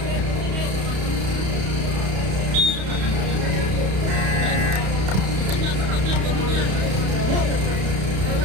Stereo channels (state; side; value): late; left; 31 ms